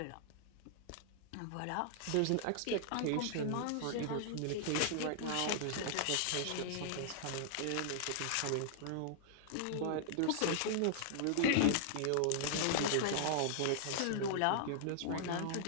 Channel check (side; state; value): both; different; correlation -0.01